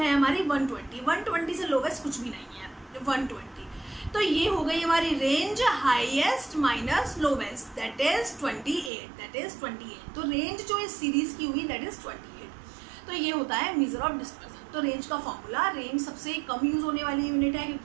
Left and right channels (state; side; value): drops out; left; at 8.9 s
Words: हमारी 120, 120 से लोवेस्ट कुछ भी नहीं है, 120। तो ये हो गई हमारी range highest minus lowest, that is 28। तो रेंज जो इस सीरीज की हुई दैट इज 28। तो ये होता है मेजर ऑफ डिस्पर्सन। तो रेंज का फॉर्मूला, रेंज सबसे कम यूज होने वाली यूनिट है